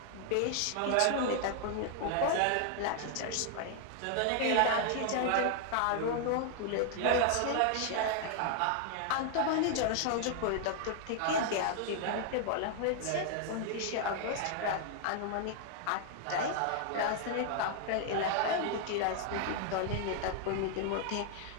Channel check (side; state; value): both; different; correlation 0.00